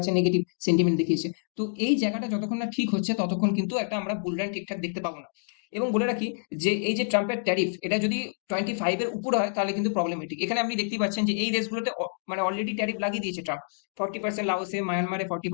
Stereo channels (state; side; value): silent; right; digital silence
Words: নেগেটিভ সেন্টিমেন্ট দেখিয়েছে। তো এই জায়গাটা যতক্ষণ না ঠিক হচ্ছে ততক্ষণ কিন্তু একটা আমরা বুলরান ঠিকঠাক দেখতে পাবো না। এবং বলে রাখি যে এই যে ট্রাম্পের ট্যারিফ, এটা যদি 25 এর উপরে হয় তাহলে কিন্তু প্রবলেমেটিক। এখানে আপনি দেখতেই পাচ্ছেন যে এই দেশগুলোতে মানে অলরেডি ট্যারিফ লাগিয়ে দিয়েছে ট্রাম্প। 40%, লাওসে, মায়ানমারে